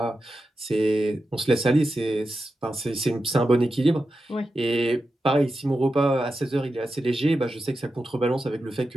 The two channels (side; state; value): both; normal; correlation 0.90